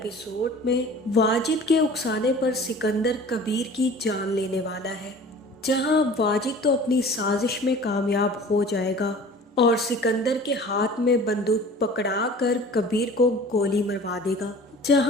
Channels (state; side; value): normal; both; correlation 0.44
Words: में वाजिद के उकसाने पर सिकंदर कबीर की जान लेने वाला है। जहां अब वाजिद तो अपनी साजिश में कामयाब हो जाएगा और सिकंदर के हाथ में बंदूक पकड़ा कर कबीर को गोली मरवा देगा।